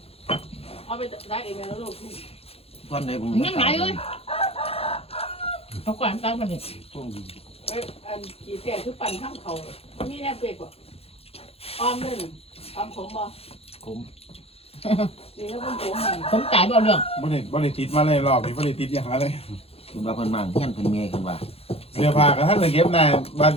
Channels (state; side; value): late; right; 0.29 ms